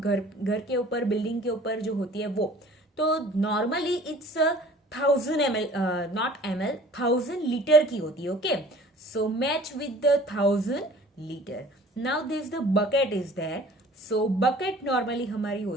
के ऊपर बिल्डिंग के ऊपर जो होती है वो, तो normally it's 1000 ml, not ml, 1000 litre की होती है. Okay, so match with the 1000 litre. Now this the bucket is there. So bucket normally हमारी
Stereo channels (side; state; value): both; normal; correlation 0.48